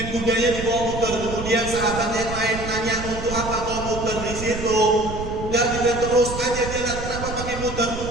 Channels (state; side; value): noise; right; rumble, 8 dB below the sound